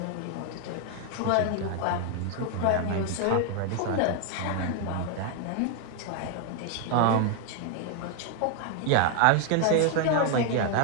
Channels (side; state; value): both; different; correlation 0.01